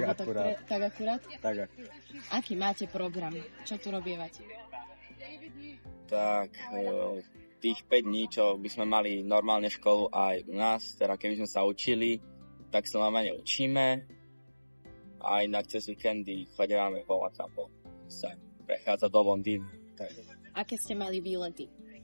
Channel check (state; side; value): inverted; both; correlation -1.00